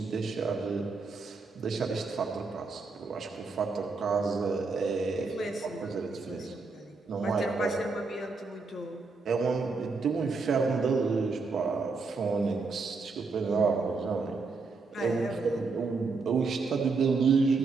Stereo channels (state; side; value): quieter; left; 4.2 dB